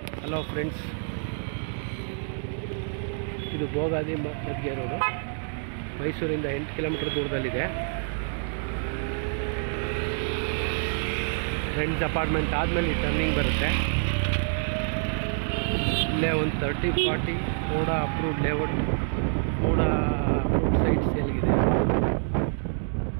Hello friends, ಇದು Bogadi ಮದ್ಗೆ road, ಮೈಸೂರಿಂದ 8 kilometre ದೂರದಲ್ಲಿದೆ. ಫ್ರೆಂಡ್ಸ್ ಅಪಾರ್ಟ್ಮೆಂಟ್ ಆದಮೇಲೆ ಟರ್ನಿಂಗ್ ಬರುತ್ತೆ. ಇಲ್ಲೇ ಒಂದು 30-40 MUDA approved layout, MUDA approved site ಸೇಲ್ಗಿದೆ.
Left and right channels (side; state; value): left; silent; 60 dB below the other